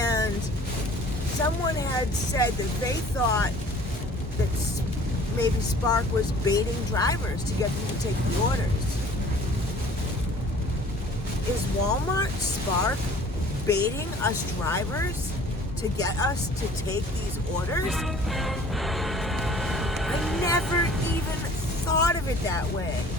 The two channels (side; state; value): both; normal; correlation 0.50